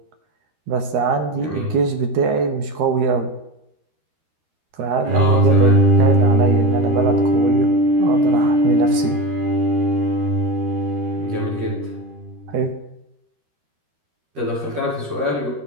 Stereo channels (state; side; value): late; left; 13 ms